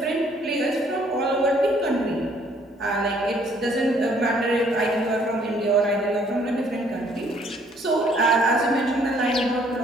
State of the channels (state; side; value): normal; both; correlation 0.62